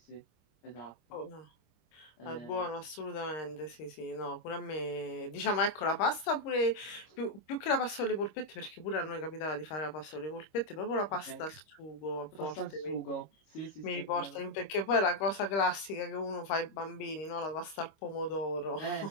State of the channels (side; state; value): right; late; 25 ms